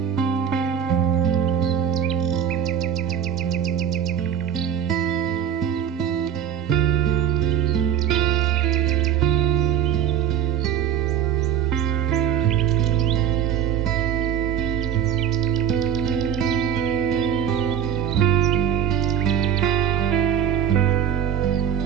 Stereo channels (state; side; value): quieter; left; 9.2 dB